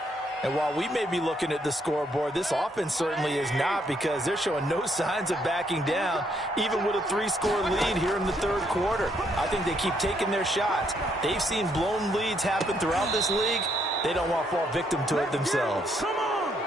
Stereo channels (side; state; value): both; normal; correlation 0.72